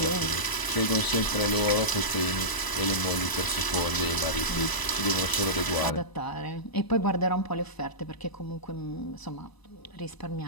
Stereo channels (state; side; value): late; right; 1.0 ms